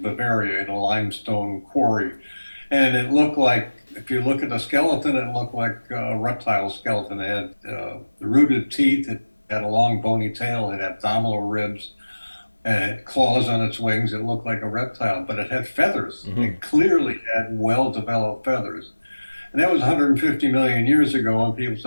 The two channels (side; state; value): both; inverted; correlation -1.00